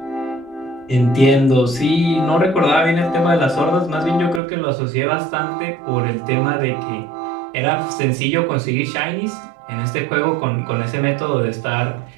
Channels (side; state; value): left; drops out; at 4.4 s